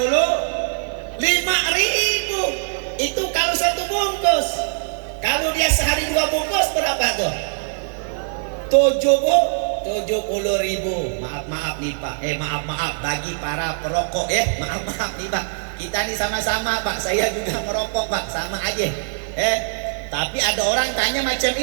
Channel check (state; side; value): silent; left; digital silence